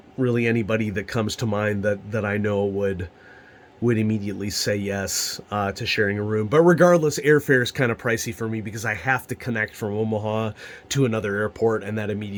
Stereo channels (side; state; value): both; identical; correlation 1.00